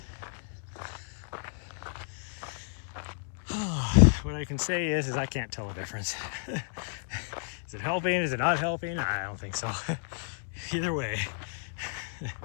What I can say is I can't tell a difference. Is it helping? Is it not helping? I don't think so. Either way.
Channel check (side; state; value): right; silent; 57 dB below the other